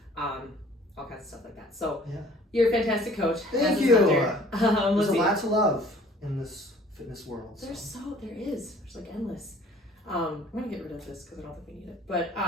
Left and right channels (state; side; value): normal; both; correlation 0.53